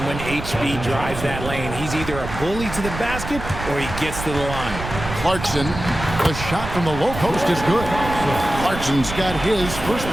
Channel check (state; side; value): noise; right; rumble, 8 dB below the sound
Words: when HB drives that lane. He's either a bully to the basket or he gets to the line. Clarkson The shot from the low post is good. Clarkson's got his first